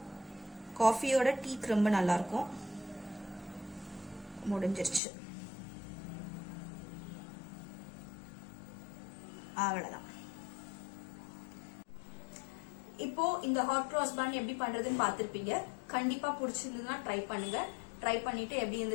காஃபியோட டீக்கு ரொம்ப நல்லா இருக்கும். முடிஞ்சிருச்சு. அவ்வளவுதான். இப்போ இந்த ஹாட் கிராஸ் பன் எப்படி பண்றதுன்னு பாத்திருப்பீங்க. கண்டிப்பா பிடிச்சிருந்ததுன்னா ட்ரை பண்ணுங்க. ட்ரை பண்ணிட்டு எப்படி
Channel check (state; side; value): drops out; right; at 5.0 s